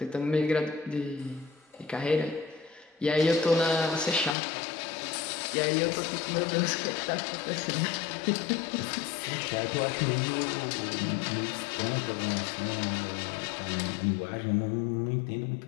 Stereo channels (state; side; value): drops out; right; at 4.4 s